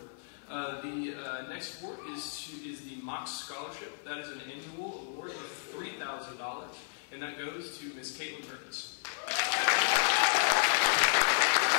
$1,000, and that goes to Ms. Caitlin Perkins.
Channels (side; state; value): right; silent; 56 dB below the other